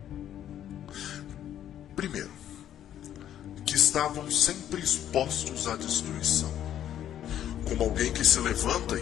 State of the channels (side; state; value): right; quieter; 10.8 dB